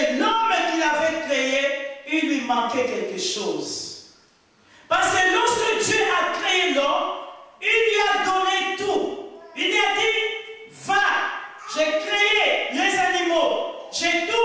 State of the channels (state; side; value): identical; both; correlation 1.00